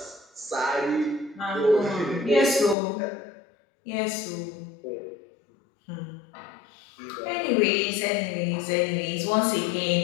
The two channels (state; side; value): drops out; right; at 2.8 s